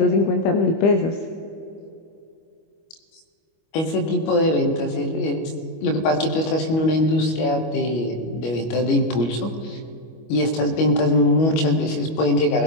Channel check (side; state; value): right; late; 25 ms